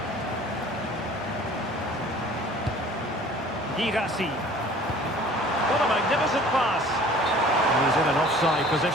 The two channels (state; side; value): normal; both; correlation 0.49